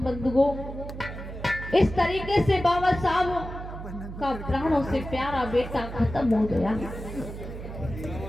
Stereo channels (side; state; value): right; noise; hum, 10 dB below the sound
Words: बंधुओं, इस तरीके से बाबा साहब का प्राणों से प्यारा बेटा खत्म हो गया